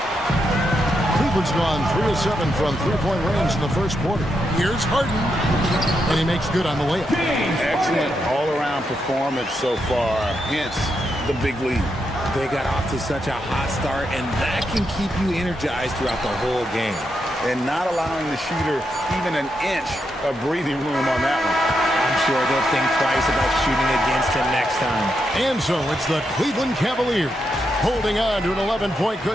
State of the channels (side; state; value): both; normal; correlation 0.83